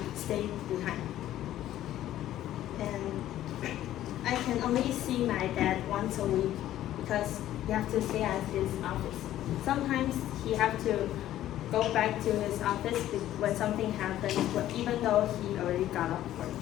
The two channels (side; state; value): right; quieter; 13.0 dB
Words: stay behind. And I can only see my dad once a week because he has to stay at his office. Sometimes he has to go back to his office when something happens, even though he already got off work.